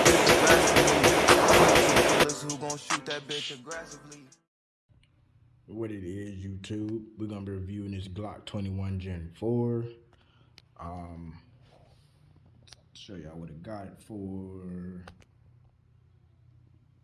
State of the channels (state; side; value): identical; both; correlation 1.00